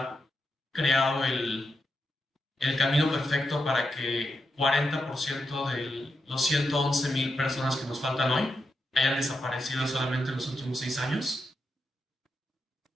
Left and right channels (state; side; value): normal; both; correlation 0.86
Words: creado el camino perfecto para que 40% de los 111,000 personas que nos faltan hoy hayan desaparecido solamente en los últimos 6 años.